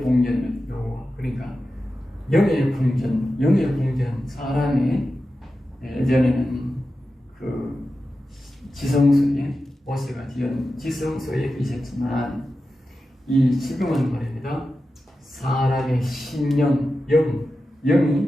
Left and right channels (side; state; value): both; normal; correlation 0.92